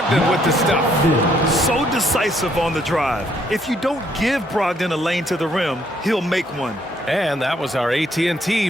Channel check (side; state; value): both; normal; correlation 0.69